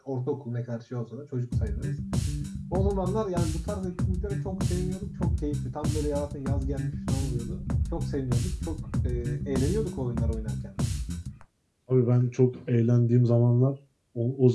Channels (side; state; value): both; identical; correlation 1.00